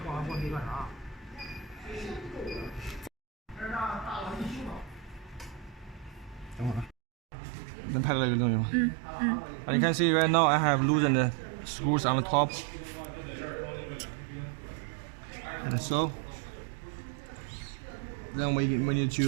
And you can see right now I have loosened the screws on the top, and so then we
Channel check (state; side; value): drops out; left; at 7.0 s